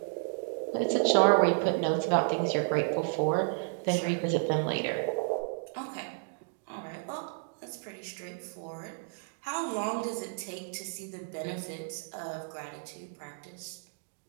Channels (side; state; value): left; silent; 56 dB below the other